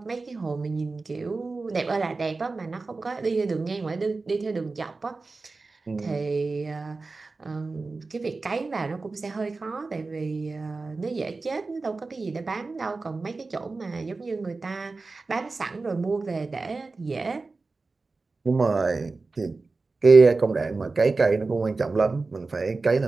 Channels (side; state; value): left; quieter; 3.8 dB